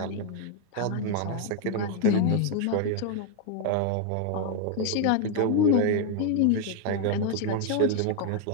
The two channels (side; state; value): both; different; correlation 0.01